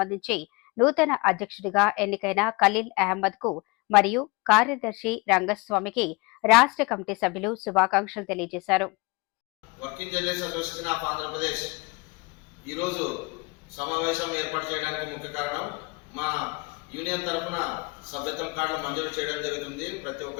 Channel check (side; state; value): right; quieter; 27.1 dB